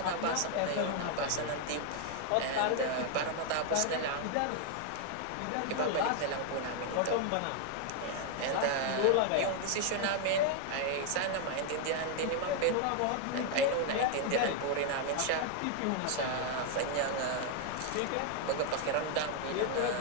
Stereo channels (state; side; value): different; both; correlation 0.00